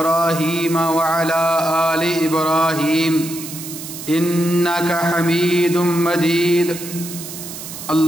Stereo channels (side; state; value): right; noise; hiss, 11 dB below the sound